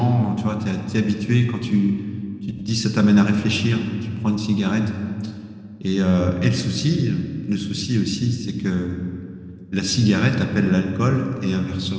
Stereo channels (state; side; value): identical; both; correlation 1.00